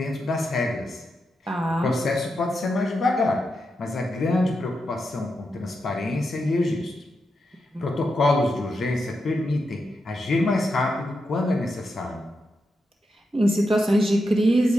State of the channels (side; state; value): both; normal; correlation 0.86